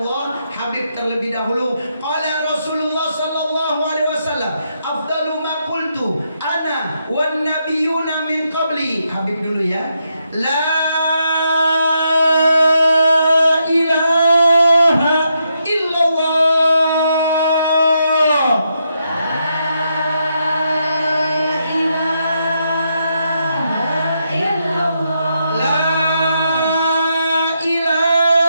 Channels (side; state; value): both; inverted; correlation -0.80